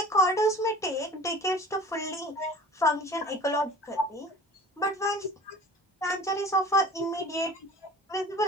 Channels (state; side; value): normal; both; correlation 0.42